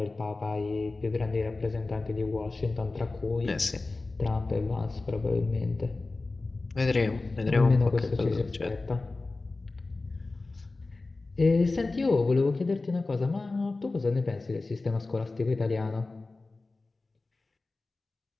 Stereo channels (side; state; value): right; quieter; 3.4 dB